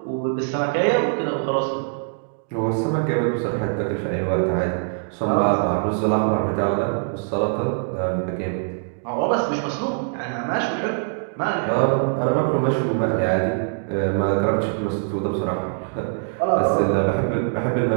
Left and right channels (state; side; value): silent; left; digital silence